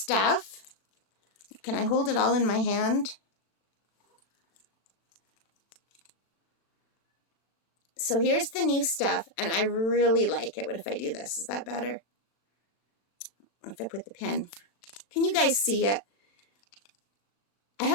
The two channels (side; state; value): right; late; 36 ms